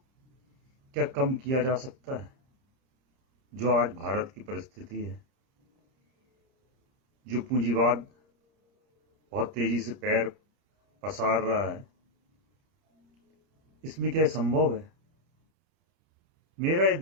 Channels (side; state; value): left; late; 30 ms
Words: क्या कम किया जा सकता है, जो आज भारत की परिस्थिति है, जो पूंजीवाद बहुत तेजी से पैर पसार रहा है। इसमें क्या संभव है? मेरा ये